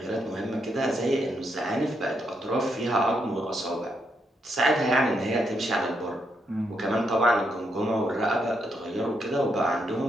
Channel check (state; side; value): normal; both; correlation 0.79